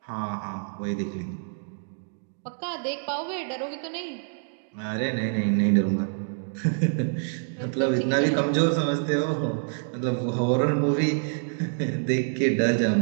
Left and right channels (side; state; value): left; silent; 60 dB below the other